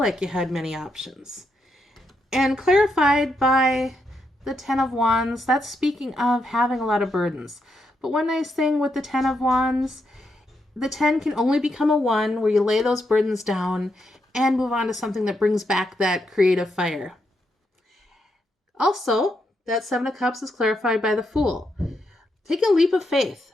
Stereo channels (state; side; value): normal; both; correlation 0.81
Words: you had many options. And clarified by the Ten of Wands, that's speaking of having a lot of burdens. But one nice thing with the Ten of Wands, the 10 can only become a 1 where you lay those burdens down and move on to something that brings back that creative fire. Also, that Seven of Cups is clarified by the Fool. Take a leap of faith,